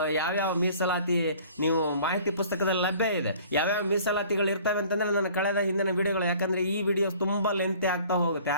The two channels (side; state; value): both; inverted; correlation -0.50